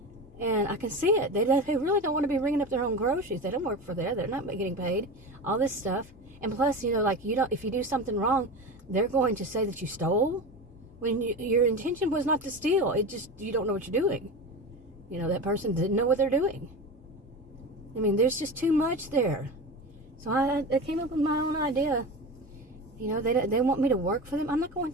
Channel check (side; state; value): both; normal; correlation 0.26